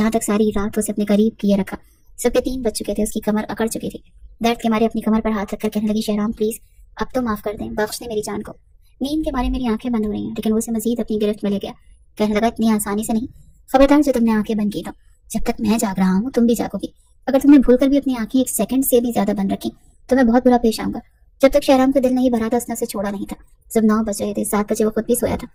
तक सारी रात उसे अपने करीब किए रखा। सबके 3 बज चुके थे। उसकी कमर अकड़ चुकी थी। दर्द के मारे अपनी कमर पर हाथ रखकर कहने लगी, शहराम प्लीज अब तो माफ कर दें, बख्श दें मेरी जान को। नींद के मारे मेरी आंखें बंद हो रही हैं। लेकिन वो उसे मजीद अपनी गिरफ्त में ले गया। कहने लगा, इतनी आसानी से नहीं, खबरदार जो तुमने आंखें बंद की तो जब तक मैं जाग रहा हूँ तुम भी जागोगी। अगर तुमने भूलकर भी अपनी आंखें 1 सेकंड से भी ज्यादा बंद रखी तो मैं बहुत बुरा पेश आऊंगा। जब तक शहराम का दिल नहीं भरा था उसने उसे छोड़ा नहीं था। जब 9 बज रहे थे, 7 बजे वो खुद भी सोया था,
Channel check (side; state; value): both; identical; correlation 1.00